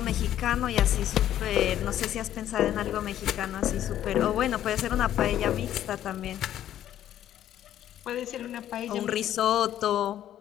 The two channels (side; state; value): right; quieter; 11.6 dB